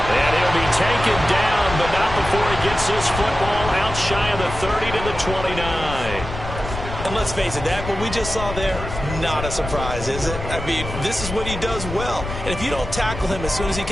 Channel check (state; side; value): noise; left; rumble, 8 dB below the sound